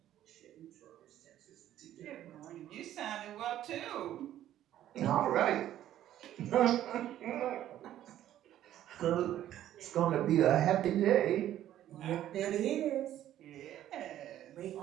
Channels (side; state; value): left; quieter; 12.3 dB